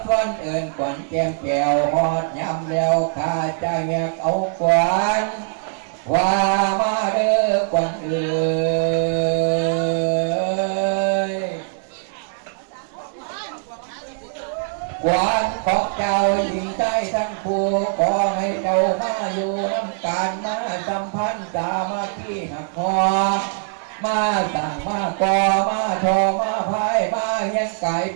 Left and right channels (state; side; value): silent; left; digital silence